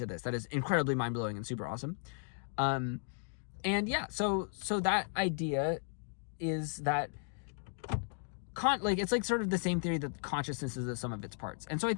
this. That is incredibly mind-blowing and super awesome. And yeah, so that idea is that it's like sort of the same theory that consciousness is the sum of its parts. And so I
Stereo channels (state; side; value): silent; right; 54 dB below the other